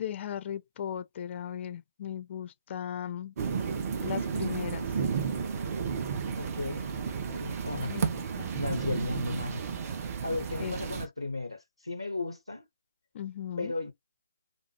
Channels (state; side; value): inverted; both; correlation -0.69